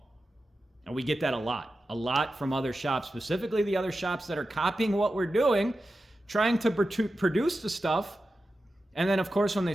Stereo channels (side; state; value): both; normal; correlation 0.92